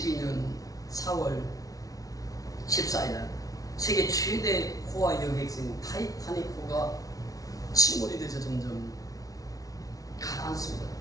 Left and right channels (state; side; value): late; right; 0.18 ms